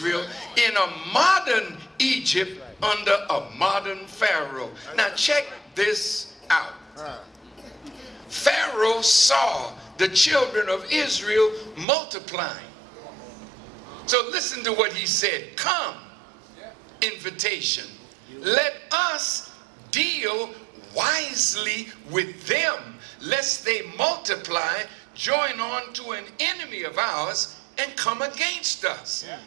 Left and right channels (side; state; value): left; drops out; at 11.9 s